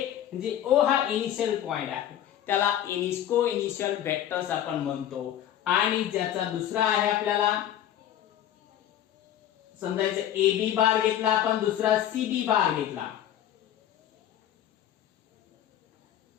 म्हणजे ओ हा इनिशियल पॉइंट आहे, त्याला को इनिशियल वेक्टर्स आपण म्हणतो. आणि ज्याचा दुसरा आहे आपल्याला समजायचं ए बी बार घेतला आपण, दुसरा सी बी बार घेतला.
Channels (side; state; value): right; quieter; 11.2 dB